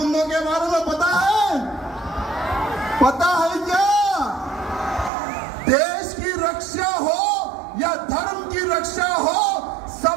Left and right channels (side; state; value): left; drops out; at 5.1 s